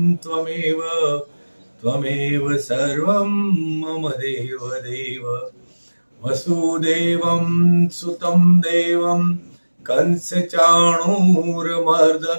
त्वमेव सर्वं मम देव वसुदेवं सुतं देवं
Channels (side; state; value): both; inverted; correlation -1.00